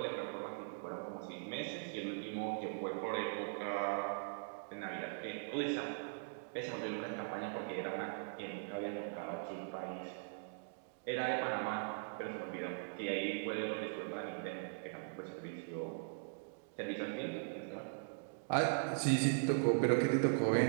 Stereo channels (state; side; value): silent; left; digital silence